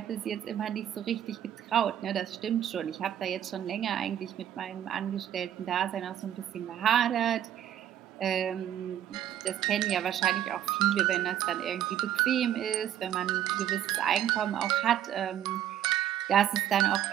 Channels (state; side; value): quieter; left; 10.8 dB